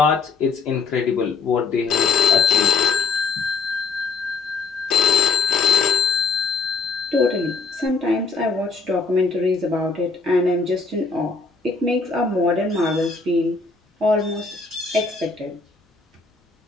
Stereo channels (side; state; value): right; quieter; 4.6 dB